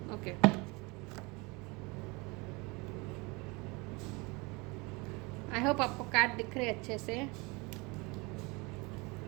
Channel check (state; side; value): quieter; left; 26.6 dB